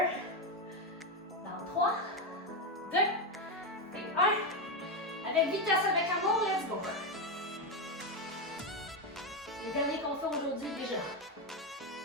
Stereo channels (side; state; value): both; normal; correlation 0.09